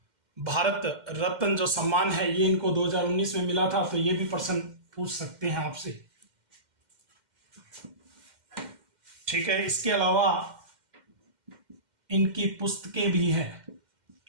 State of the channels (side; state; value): left; late; 2.1 ms